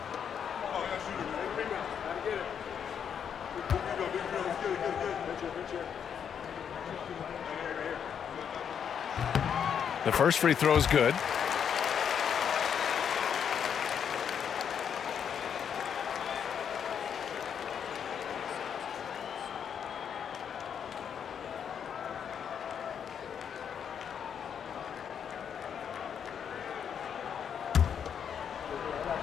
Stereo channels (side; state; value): right; quieter; 7.9 dB